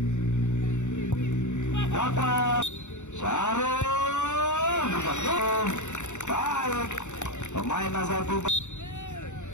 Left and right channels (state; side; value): late; right; 0.84 ms